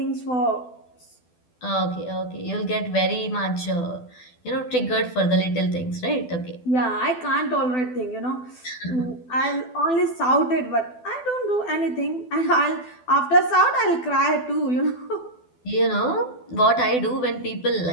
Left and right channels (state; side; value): late; right; 12 ms